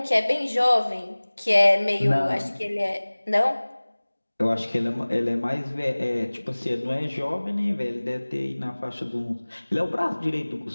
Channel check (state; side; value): inverted; both; correlation -1.00